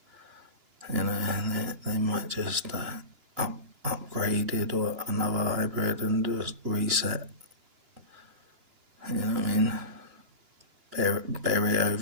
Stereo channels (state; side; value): late; left; 2.9 ms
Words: you know, they might just upgrade it or another hybrid and just reset. You know what I mean? Bury